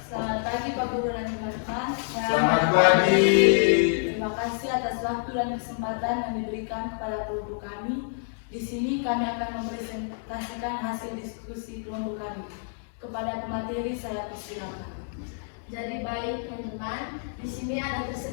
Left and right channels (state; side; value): silent; right; digital silence